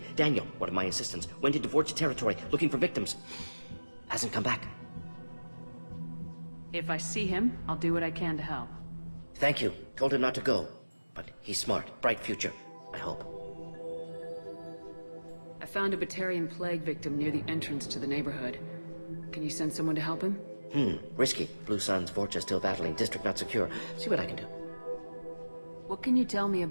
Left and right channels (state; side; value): inverted; both; correlation -1.00